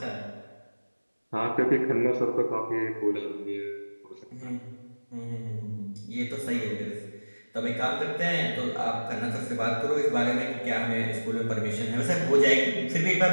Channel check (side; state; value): both; inverted; correlation -1.00